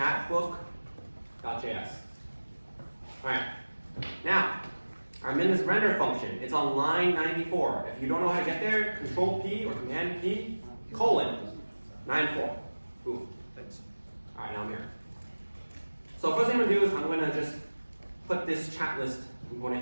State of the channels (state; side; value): inverted; both; correlation -1.00